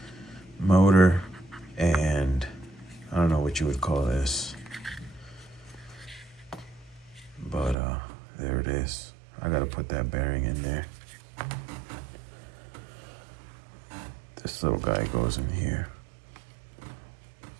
motor, and I don't know what you would call this, but there it is. I gotta put that bearing in there. This little guy goes in here.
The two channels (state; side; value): drops out; left; at 7.8 s